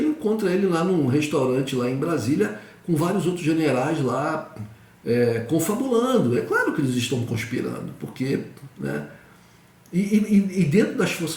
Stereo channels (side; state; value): both; identical; correlation 1.00